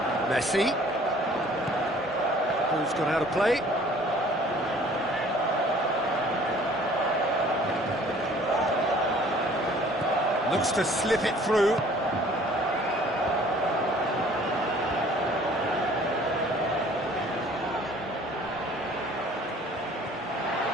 Messi. Ball's gone out of play. Looks to slip it through.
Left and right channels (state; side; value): normal; both; correlation 0.53